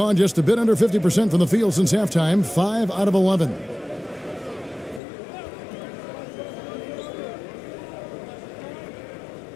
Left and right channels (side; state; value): right; drops out; at 5.0 s